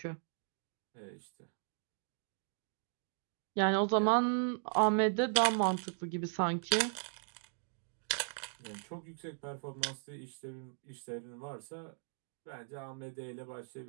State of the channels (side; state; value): left; silent; digital silence